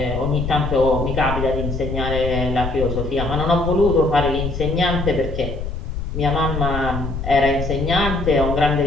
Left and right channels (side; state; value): left; noise; rumble, 5 dB below the sound